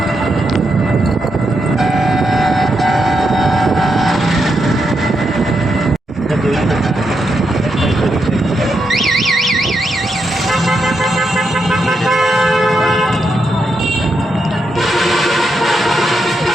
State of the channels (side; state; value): both; normal; correlation 0.83